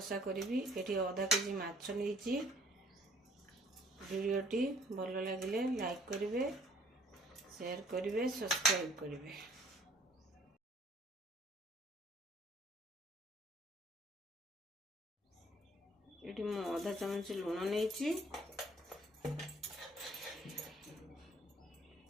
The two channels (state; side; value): normal; both; correlation 0.58